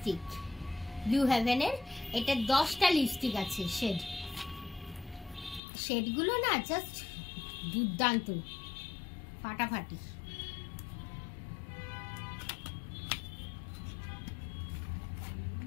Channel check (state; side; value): drops out; right; at 5.6 s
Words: ব্লু হেভেনের। এটা 10টা লিপস্টিক আছে, শেডগুলো না জাস্ট দুর্দান্ত, ফাটাফাটি।